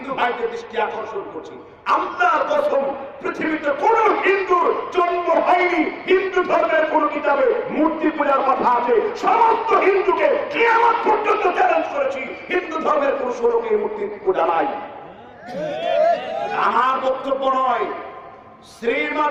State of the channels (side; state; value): both; identical; correlation 1.00